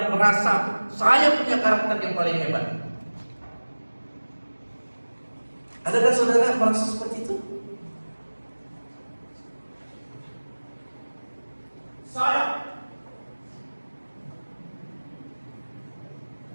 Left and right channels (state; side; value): inverted; both; correlation -1.00